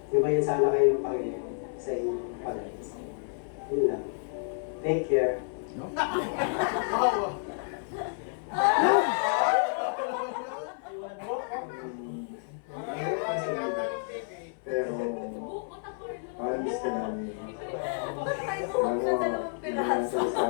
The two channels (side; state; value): right; silent; 56 dB below the other